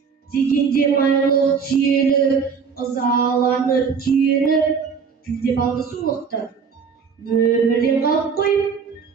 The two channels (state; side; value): quieter; left; 6.0 dB